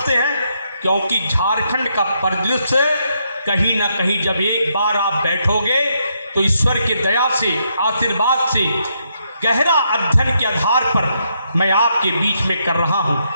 हैं? क्योंकि झारखंड का परिदृश्य कहीं ना कहीं जब एक बार आप बैठोगे तो ईश्वर की दया से, आशीर्वाद से, गहरा अध्ययन के आधार पर मैं आपके बीच में कर रहा हूँ।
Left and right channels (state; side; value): inverted; both; correlation -0.77